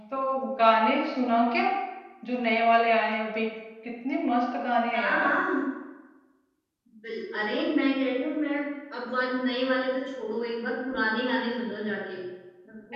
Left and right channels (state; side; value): identical; both; correlation 1.00